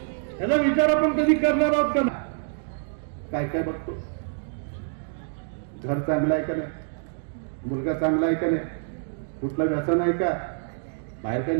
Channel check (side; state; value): left; silent; digital silence